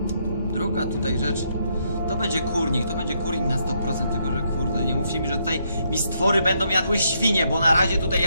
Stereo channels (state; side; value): inverted; both; correlation -0.75